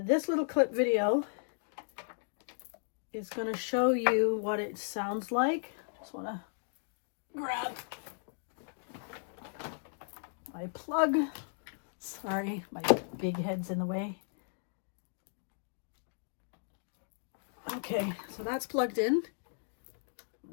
This little clip video is going to show you what it sounds like. Just want to grab my plug. Sorry, my big head's in the way. Okay, so that's plugged in.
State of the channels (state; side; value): silent; right; digital silence